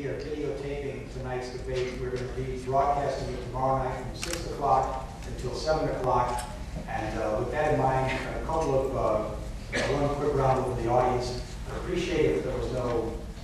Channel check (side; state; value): both; identical; correlation 1.00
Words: videotaping tonight's debate. We're going to be broadcasting it tomorrow night from 6 o'clock until 7 o'clock. And with that in mind, a couple of one quick round over the audience. I appreciate if there was no